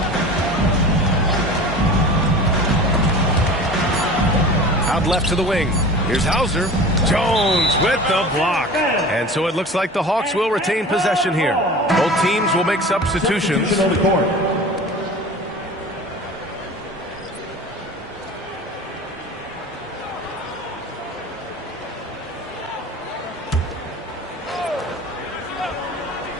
Out left to the wing. Here's Hauser. Jones with the block. And so it looks like the Hawks will retain possession here. Both teams will make substitutions.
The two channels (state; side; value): normal; both; correlation 0.37